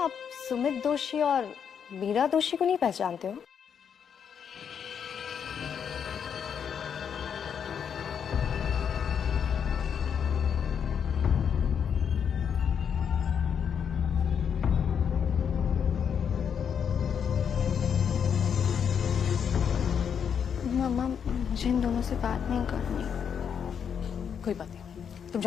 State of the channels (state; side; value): quieter; right; 7.6 dB